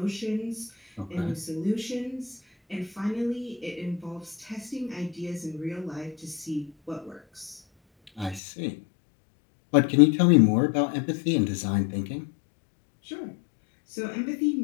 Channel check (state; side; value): drops out; right; at 8.4 s